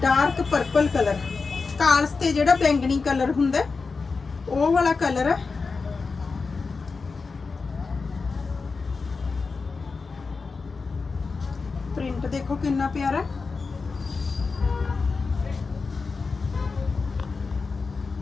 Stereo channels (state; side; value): quieter; right; 4.5 dB